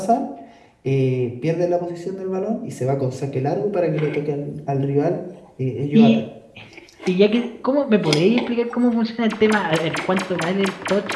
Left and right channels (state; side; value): identical; both; correlation 1.00